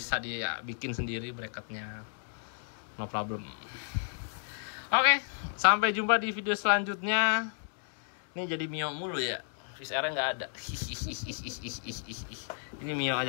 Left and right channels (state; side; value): silent; right; digital silence